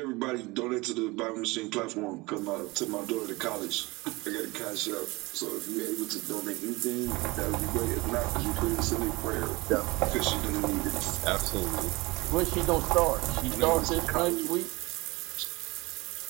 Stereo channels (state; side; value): quieter; left; 23.4 dB